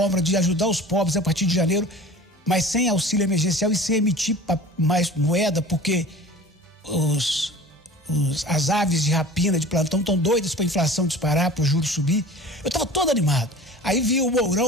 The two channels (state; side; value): normal; both; correlation 0.40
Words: de ajudar os pobres a partir de janeiro, mas sem auxílio emergencial e sem emitir mais moeda, porque as aves de rapina, de plantão, estão doidas para a inflação disparar, para o juros subir. Eu estava todo animado. Aí vi o